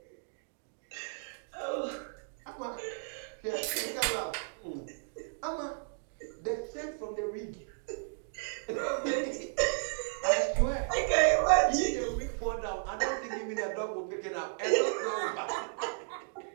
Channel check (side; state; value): left; silent; digital silence